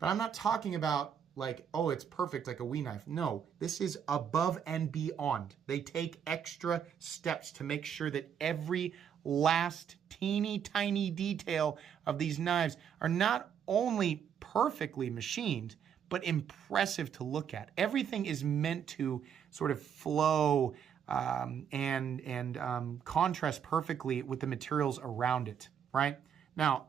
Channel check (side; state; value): left; quieter; 8.2 dB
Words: I'm not talking about like, oh, it's perfect like a Wii knife. No, this is above and beyond. They take extra steps to make sure that every last teeny tiny detail of these knives are not only perfectly machined, but impressive to look at. Everything is meant to sort of flow and contrast perfectly with the materials around it, right?